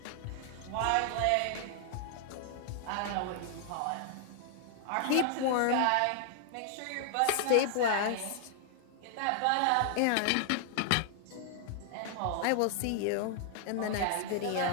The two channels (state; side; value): different; both; correlation 0.00